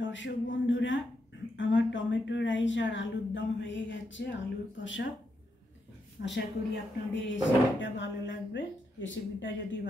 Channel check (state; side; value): normal; both; correlation 0.82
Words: বন্ধুরা, আমার টমেটো রাইস আর আলুর দম হয়ে গেছে, আলুর কষা। আশা করি আপনাদের রেসিপিটা ভালো লাগবে। রেসিপিটা যদি